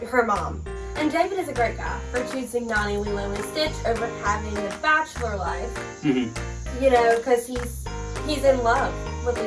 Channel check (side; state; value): both; identical; correlation 1.00